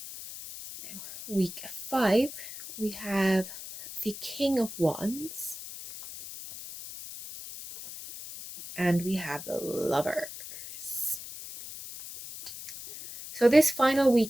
Now, week 5, we have the King of Wands, and we have the Lovers. So this final week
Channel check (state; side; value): noise; left; hiss, 12 dB below the sound